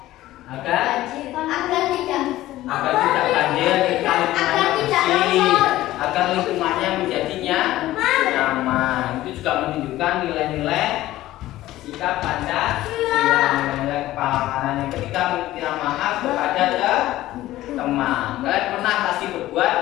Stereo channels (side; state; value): right; quieter; 15.5 dB